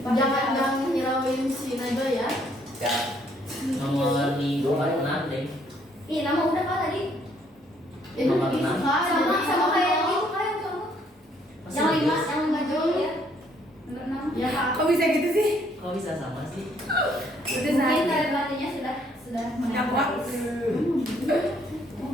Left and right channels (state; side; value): normal; both; correlation 0.66